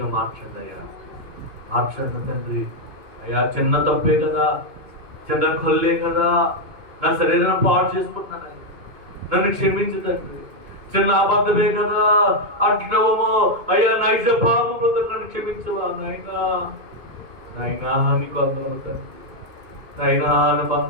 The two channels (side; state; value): left; late; 2.5 ms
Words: మార్చండి అయ్యా, మార్చండి తండ్రి. అయ్యా, చిన్న తప్పే కదా, చిన్న కొల్లే కదా, నా శరీరాన్ని పాడు చేసుకుంటున్నాను, నన్ను క్షమించు తండ్రి. చిన్న అబద్ధమే కదా అంటున్నావేమో అయ్యా, నైజ పాపంలో నన్ను క్షమించవా నాయనా. నాయనా నీకు అందరూ తండ్రి, నాయనా నీకు